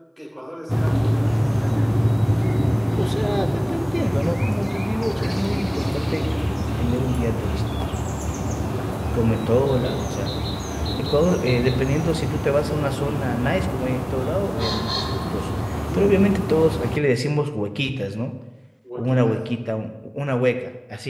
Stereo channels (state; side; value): identical; both; correlation 1.00